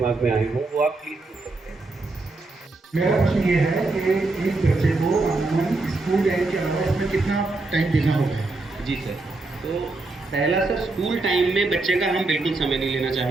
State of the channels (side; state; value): left; quieter; 3.3 dB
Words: में आए हों वो आप प्लीज़ पूछ सकते हैं। मेरा प्रश्न ये है कि एक बच्चे को स्कूल टाइम के अलावा इसमें कितना टाइम देना होगा? जी सर, तो पहला सर, स्कूल टाइम में बच्चे का हम बिल्कुल समय नहीं लेना